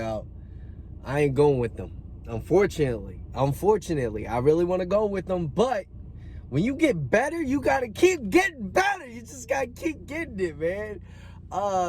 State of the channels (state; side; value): identical; both; correlation 1.00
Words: I ain't going with them. Unfortunately, I really want to go with them, but when you get better, you gotta keep getting better. You just gotta keep getting it, man.